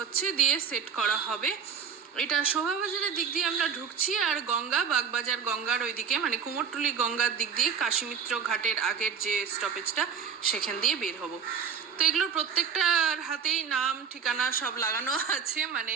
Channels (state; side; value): quieter; left; 7.1 dB